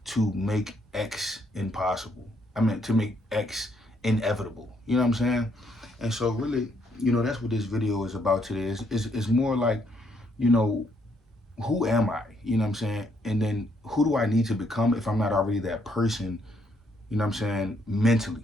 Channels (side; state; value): both; normal; correlation 0.72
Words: to make X impossible? I mean, to make X inevitable. You know what I'm saying? And so, really, that's what this video is about today. It's more like, you know, who am I? You know what I'm saying? And then who do I need to become if I'm not already that person? You know what I'm saying?